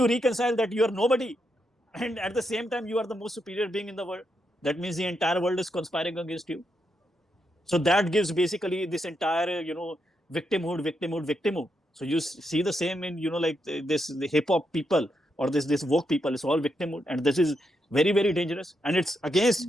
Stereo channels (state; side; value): normal; both; correlation 0.82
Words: reconcile that you are nobody, and at the same time you are the most superior being in the world? That means the entire world is conspiring against you. So that gives basically this entire, victimhood. So you see the same in, like the hip hop people or this woke people. It's all victimhood, and this is very, very dangerous, and it's against